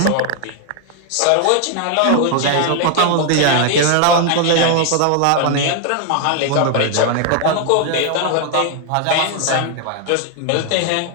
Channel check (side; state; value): both; different; correlation 0.00